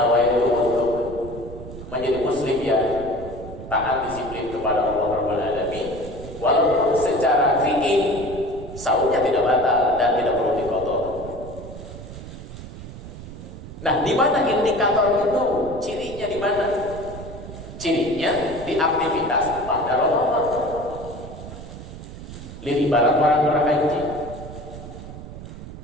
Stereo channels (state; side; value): noise; right; rumble, 12 dB below the sound